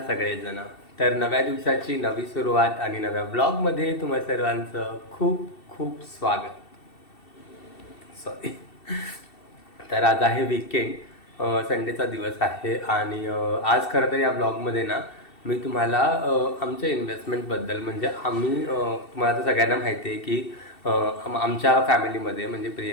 सगळेजण. तर नव्या दिवसाची नवी सुरुवात आणि नव्या ब्लॉगमध्ये तुम्हा सर्वांचं खूप खूप स्वागत. सॉरी. तर आज आहे वीकेंड, संडेचा दिवस आहे आणि आज खरं तर या ब्लॉगमध्ये ना मी तुम्हाला आमच्या इन्व्हेस्टमेंटबद्दल म्हणजे आम्ही तुम्हाला तर सगळ्यांना माहिती आहे की आमच्या फॅमिलीमध्ये म्हणजे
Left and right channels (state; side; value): late; right; 2.7 ms